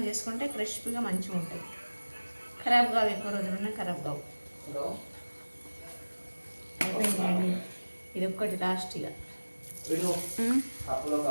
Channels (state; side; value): inverted; both; correlation -1.00